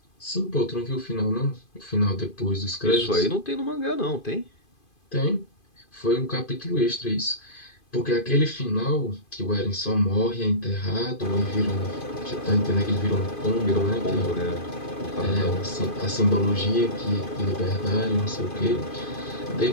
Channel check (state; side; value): late; right; 2.5 ms